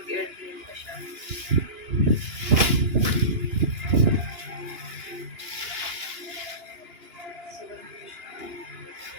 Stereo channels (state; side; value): late; left; 2.9 ms